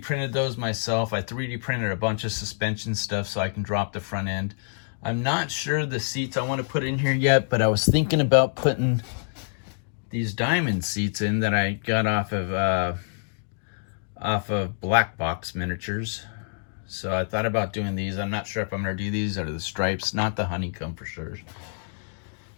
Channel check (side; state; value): right; silent; digital silence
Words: printed those myself. I 3D printed a bunch of suspension stuff so I can drop the front end. I'm not sure the seats I want to put in here yet, but I was thinking about putting these diamond seats in that I got off of Black Box Miniatures. So I thought about doing these. I'm not sure if I'm going to do these or the stripes, not the honeycomb for sure.